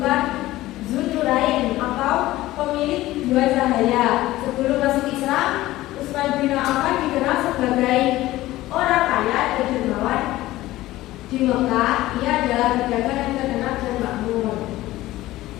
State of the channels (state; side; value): quieter; right; 16.6 dB